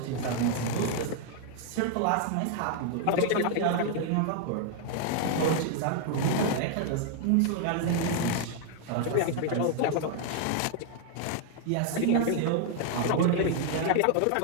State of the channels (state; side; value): different; both; correlation 0.00